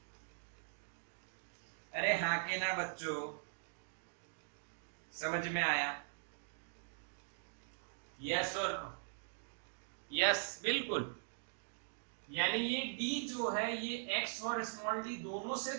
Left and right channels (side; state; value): left; silent; digital silence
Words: अरे हाँ के ना बच्चों, समझ में आया? यस और नो? यस बिल्कुल। यानी ये d जो है ये x और स्मॉल d दोनों से